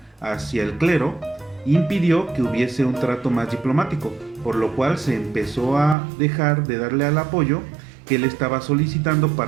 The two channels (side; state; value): left; drops out; at 6.0 s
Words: hacia el clero, impidió que hubiese un trato más diplomático, por lo cual se empezó a dejar de darle al apoyo que él estaba solicitando